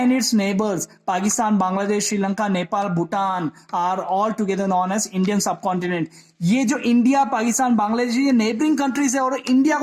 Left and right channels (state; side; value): identical; both; correlation 1.00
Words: its neighbours Pakistan, Bangladesh, Sri Lanka, Nepal, Bhutan are all together known as Indian subcontinent. ये जो इंडिया, पाकिस्तान, बांग्लादेश, ये नेबरिंग कंट्रीज है, और इंडिया